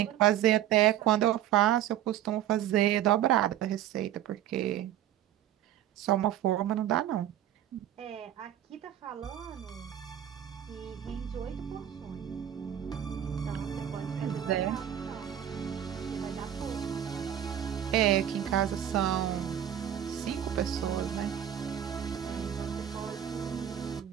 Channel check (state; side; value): quieter; left; 11.0 dB